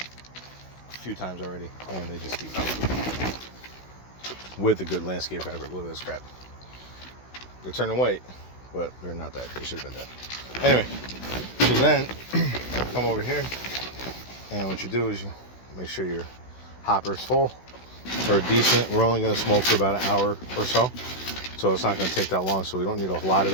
a few times already, and they just keep coming with a good landscape fabric. Look at this crap. They're turning white, but they're not that. They should have been dead. Anyway, so then come over here, and what you do is you make sure your hopper is full or decent. We're only going to smoke for about an hour or so, so it's not going to take that long, so we don't need a lot of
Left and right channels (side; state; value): right; late; 16 ms